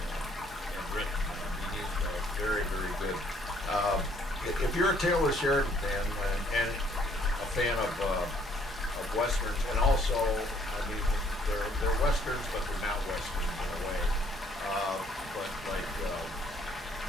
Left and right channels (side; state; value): both; normal; correlation 0.64